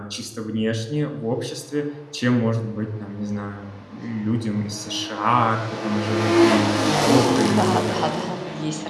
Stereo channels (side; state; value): both; identical; correlation 1.00